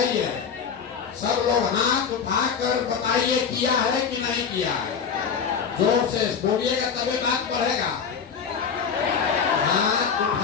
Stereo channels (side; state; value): right; quieter; 6.6 dB